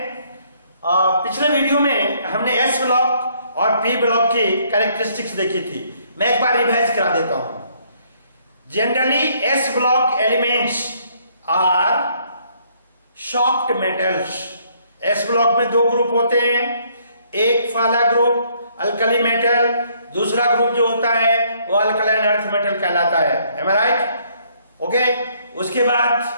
पिछले वीडियो में हमने S ब्लॉक और P ब्लॉक की कैरेक्टरिस्टिक्स देखी थी। मैं एक बार रिवाइज करा देता हूं। Generally S block elements are soft metals. S block में दो ग्रुप होते हैं, एक वाला ग्रुप अल्कली मेटल, दूसरा ग्रुप जो होता है वो अल्कलाइन अर्थ मेटल कहलाता है। Am I right? ओके, उसके बाद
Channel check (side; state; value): both; inverted; correlation -0.66